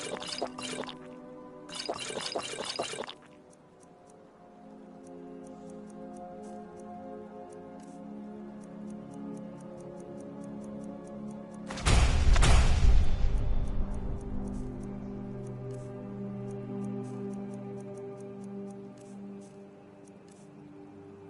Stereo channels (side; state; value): both; identical; correlation 1.00